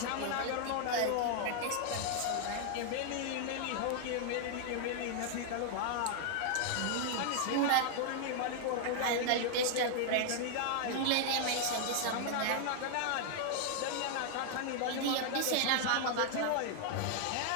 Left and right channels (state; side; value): different; both; correlation 0.00